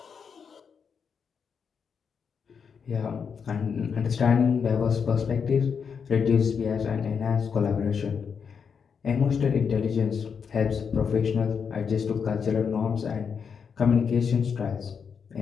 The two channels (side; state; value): right; quieter; 6.4 dB